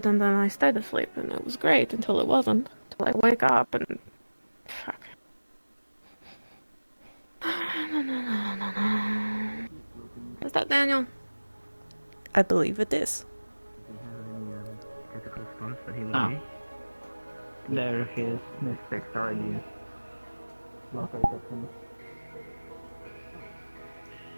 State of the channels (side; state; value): both; inverted; correlation -1.00